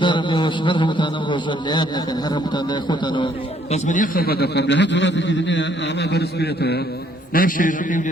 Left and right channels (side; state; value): both; normal; correlation 0.65